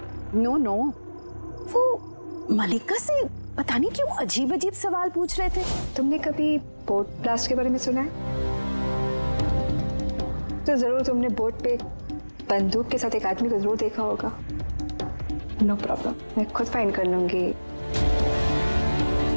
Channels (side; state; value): both; inverted; correlation -1.00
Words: नो, वो मल्लिका से पता नहीं क्यों अजीब सवाल पूछ रहे थे। तुमने कभी बोट ब्लास्ट के बारे में सुना है? तो जरूर तुमने बोट पे बंदूक के साथ एक आदमी को जरूर देखा होगा। नो प्रॉब्लम, मैं खुद फाइंड कर लूंगी।